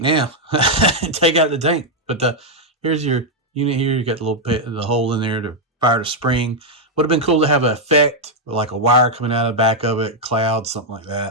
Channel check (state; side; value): normal; both; correlation -0.02